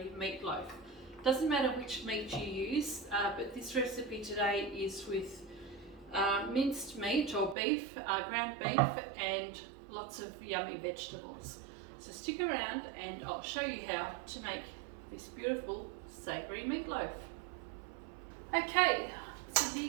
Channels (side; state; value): left; drops out; at 7.6 s